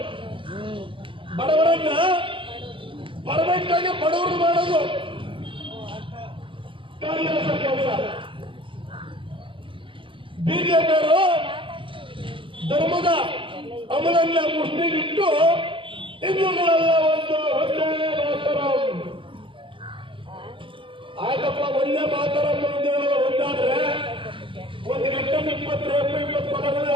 ಬಡವರನ್ನ ಪರ್ಫೆಕ್ಟ್ ಆಗಿ ಬಡವರು ಮಾಡೋದು ಕಾಂಗ್ರೆಸ್ ಕೆಲಸ. ಬಿಜೆಪಿಯವರು ಧರ್ಮದ ಅಮಲನ್ನ ಮುಸ್ಲಿಗಿಟ್ಟು ಹಿಂದೂಗಳೆಲ್ಲ ಒಂದೇ ಮಾತರ. ಆಯ್ತಪ್ಪ, ಒಂದೇ ಮಾತರ ಒಂದಾದ್ರೆ ಒಂದು ಗಂಟೆ 20 ಪದಗಳು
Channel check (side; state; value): left; late; 0.25 ms